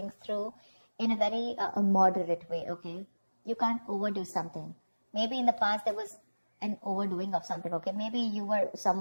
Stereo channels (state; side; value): inverted; both; correlation -1.00